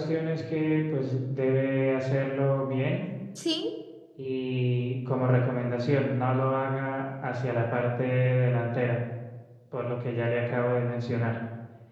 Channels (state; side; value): identical; both; correlation 1.00